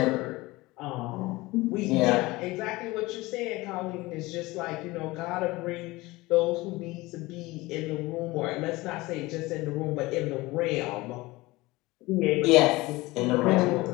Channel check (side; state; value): right; quieter; 20.8 dB